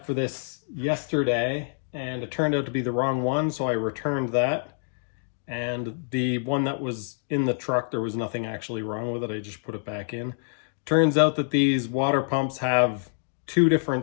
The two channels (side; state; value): right; silent; digital silence